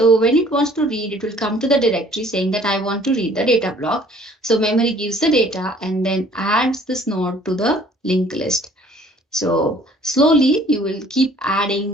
when it wants to read, it will come to the directory saying that I want to read the data block. So memory gives the data and then adds this node to the linked list. So slowly you will keep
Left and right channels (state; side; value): normal; both; correlation 0.55